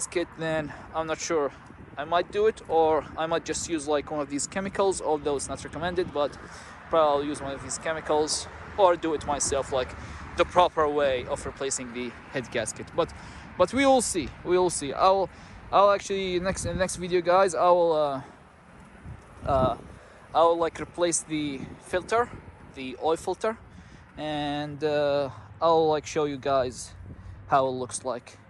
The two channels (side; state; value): both; identical; correlation 1.00